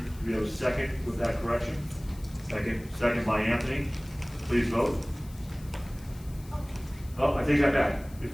Do we have a second with that correction? Second by Anthony. Please vote. Oh, I take that back.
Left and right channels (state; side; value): noise; left; hiss, 23 dB below the sound